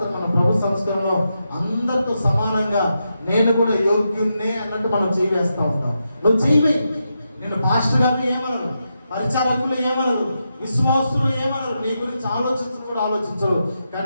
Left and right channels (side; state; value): both; inverted; correlation -0.86